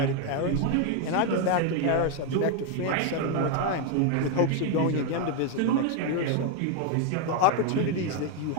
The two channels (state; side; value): different; both; correlation 0.01